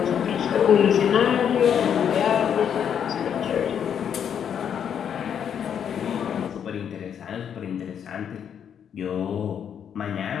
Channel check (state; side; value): quieter; right; 8.4 dB